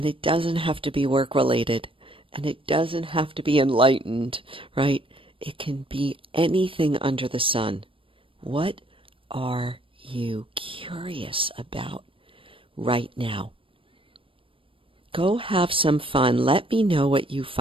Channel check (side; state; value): left; late; 0.25 ms